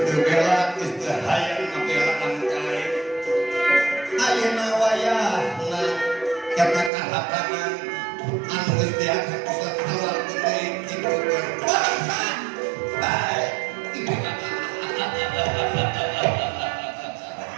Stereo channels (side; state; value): left; drops out; at 6.9 s